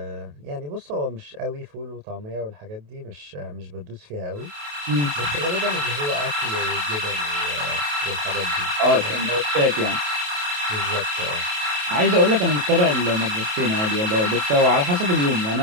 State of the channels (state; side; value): late; left; 28 ms